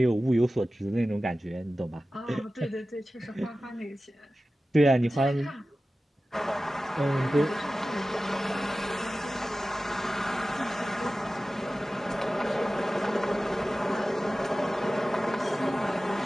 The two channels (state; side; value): normal; both; correlation 0.95